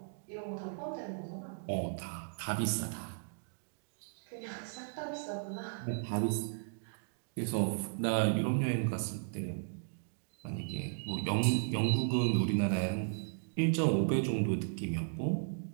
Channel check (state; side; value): silent; left; digital silence